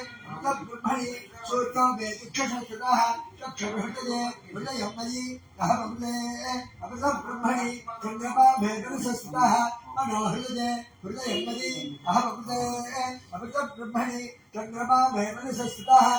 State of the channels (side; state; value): both; identical; correlation 1.00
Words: ब्रह्मणि सूर्यो वेदिक्षसंस्कृतः चक्षुर्हृदये हृदयं मयि अहमते ब्रह्मणि चन्द्रमा वेदसंस्कृतः मनो हृदये हृदयं मयि अहमते ब्रह्मणि चन्द्रमा वेदसंस्कृतः